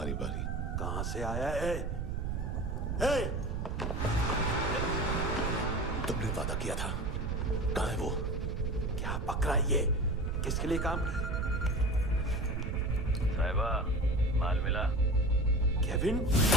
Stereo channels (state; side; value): noise; right; rumble, 1 dB below the sound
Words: बारी। कहां से आया है? हे! तुमने वादा किया था, कहां है वो? क्या पकड़ा ये? किसके लिए काम? साहिबा, माल मिला? केविन?